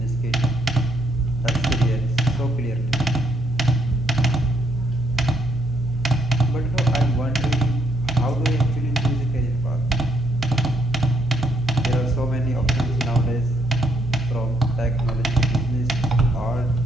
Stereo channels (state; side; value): noise; left; hum, 18 dB below the sound